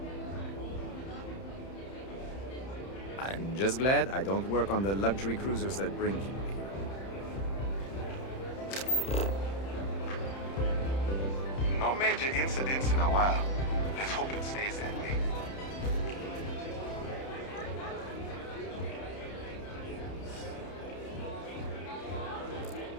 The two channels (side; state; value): right; late; 31 ms